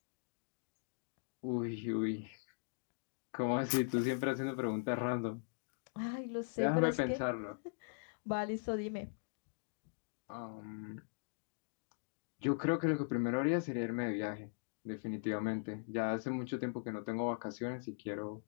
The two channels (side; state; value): right; silent; digital silence